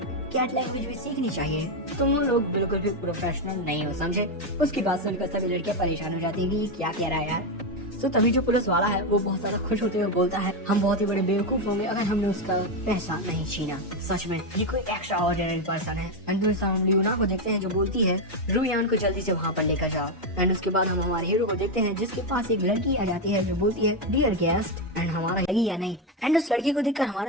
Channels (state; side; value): normal; both; correlation 0.07